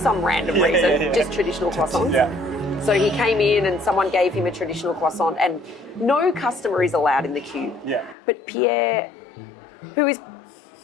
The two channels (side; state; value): right; drops out; at 8.2 s